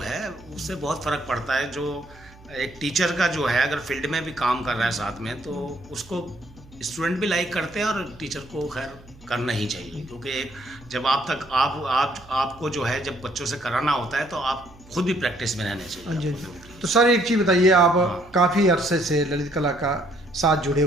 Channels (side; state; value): right; noise; hum, 23 dB below the sound